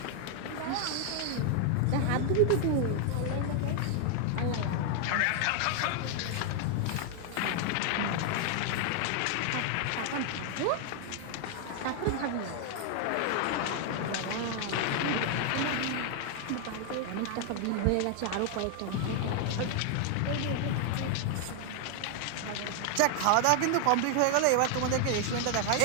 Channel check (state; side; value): different; both; correlation 0.00